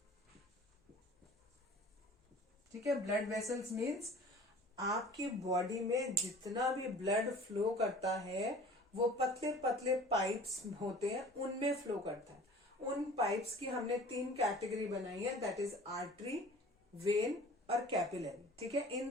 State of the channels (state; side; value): normal; both; correlation 0.45